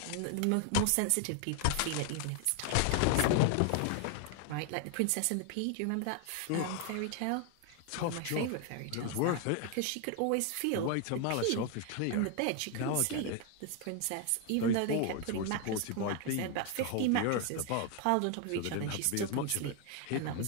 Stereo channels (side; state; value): both; different; correlation 0.01